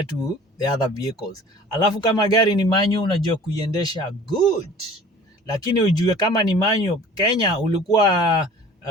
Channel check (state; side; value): normal; both; correlation 0.46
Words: to the other vehicles. Alafu kama gari ni manual, unajua kuiendesha good, lakini ujue kama ni manual, Kenya ulikuwa